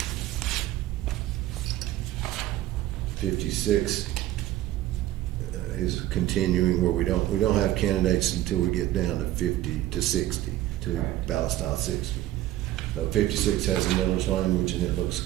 56 is continuing where we don't have candidates until we get down to 50 to 60 to Correct. ballot style 60. So 56 has a millage language and it looks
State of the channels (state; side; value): quieter; left; 14.5 dB